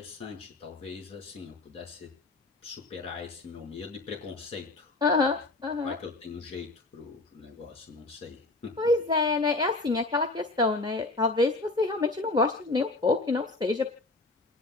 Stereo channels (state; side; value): quieter; right; 3.0 dB